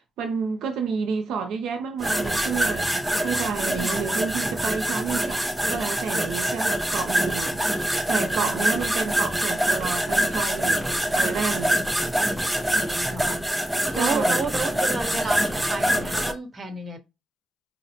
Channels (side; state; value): both; normal; correlation 0.89